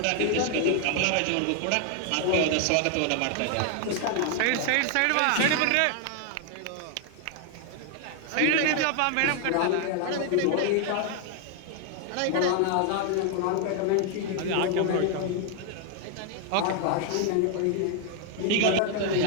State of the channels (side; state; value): both; different; correlation 0.00